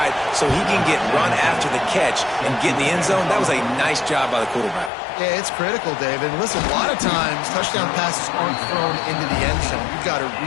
so he can get run after the catch and get in the end zone, that was a nice job by the quarterback. Yeah, it's critical, David. Listen, a lot of times touchdown passes aren't thrown into the end zone. You've got to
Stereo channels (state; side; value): drops out; right; at 4.9 s